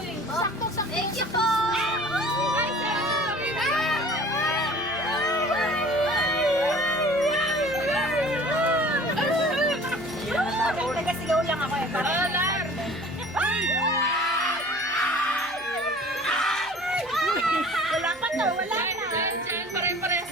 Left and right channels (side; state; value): right; noise; hum, 26 dB below the sound